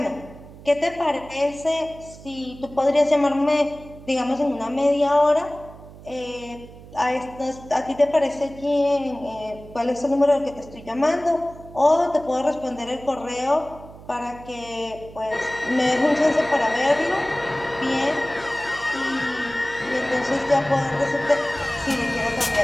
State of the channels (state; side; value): noise; right; hum, 18 dB below the sound